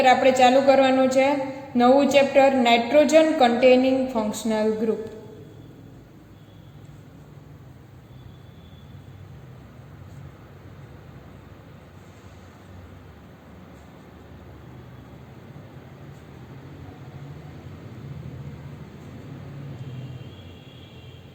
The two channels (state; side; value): identical; both; correlation 1.00